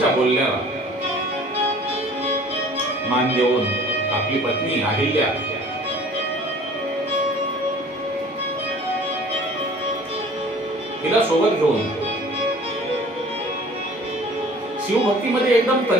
बोलण्याला मान देऊन आपली पत्नी अहिल्या तिला सोबत घेऊन शिवभक्तीमध्ये एकदम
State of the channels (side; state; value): both; normal; correlation 0.49